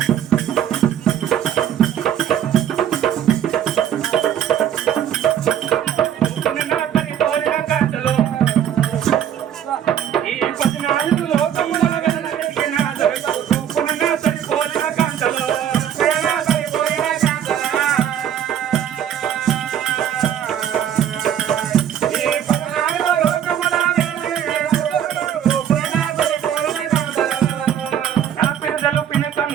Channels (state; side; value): quieter; left; 9.8 dB